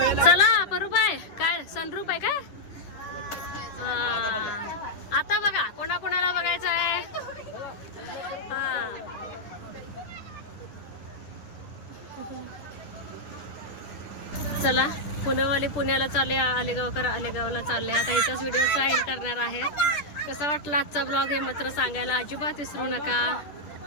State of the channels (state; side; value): late; right; 10 ms